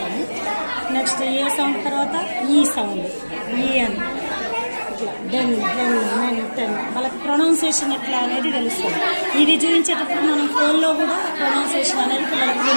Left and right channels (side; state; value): both; inverted; correlation -1.00